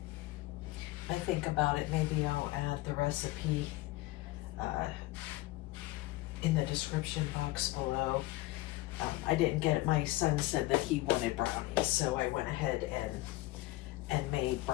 think about it, maybe I'll add the recipe in the description box below. I didn't get it. My son said that he wanted brownies, so I went ahead and made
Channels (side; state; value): right; quieter; 18.5 dB